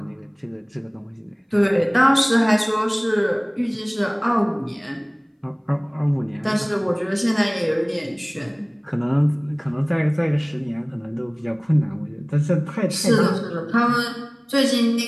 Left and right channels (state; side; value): identical; both; correlation 1.00